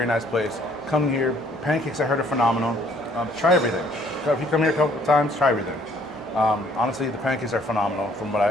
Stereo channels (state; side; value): noise; right; hum, 27 dB below the sound